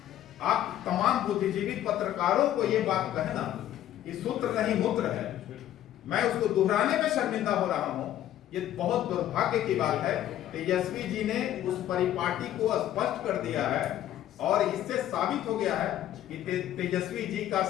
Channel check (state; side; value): quieter; right; 12.3 dB